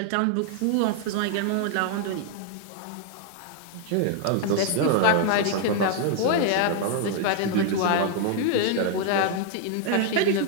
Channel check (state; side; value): different; both; correlation 0.00